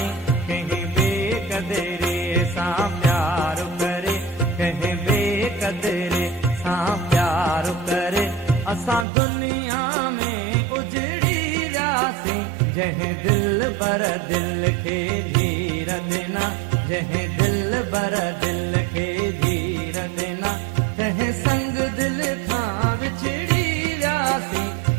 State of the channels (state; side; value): drops out; left; at 9.1 s